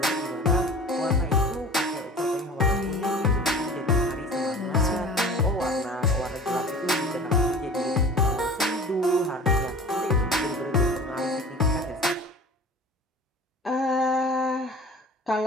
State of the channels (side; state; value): both; normal; correlation 0.42